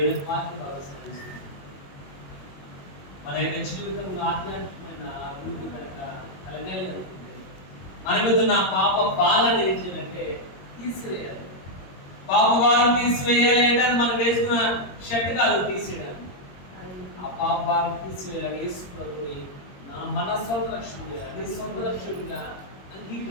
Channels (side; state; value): right; late; 22 ms